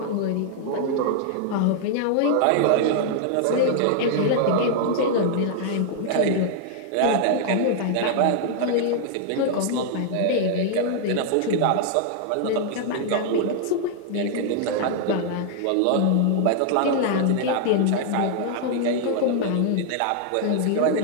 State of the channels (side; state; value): both; different; correlation 0.00